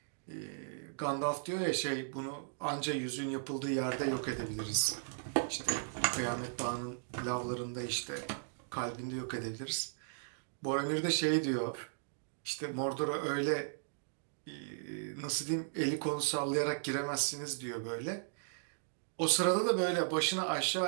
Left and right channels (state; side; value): silent; left; digital silence